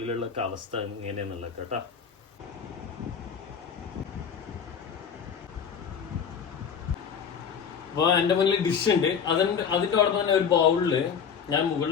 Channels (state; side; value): quieter; right; 7.0 dB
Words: അവസ്ഥ എങ്ങനെയാന്നുള്ളത് കേട്ടോ. അപ്പോൾ എൻ്റെ മുന്നിൽ ഡിഷ് ഉണ്ട്. അതിൻ്റെ അവിടെ തന്നെ ഒരു ബൗളിൽ ഞാൻ